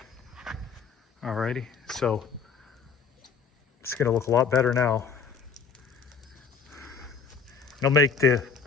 alrighty, so it's gonna look a lot better now. It'll make the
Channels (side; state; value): right; quieter; 5.6 dB